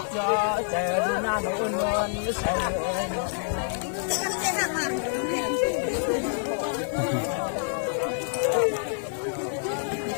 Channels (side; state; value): right; silent; digital silence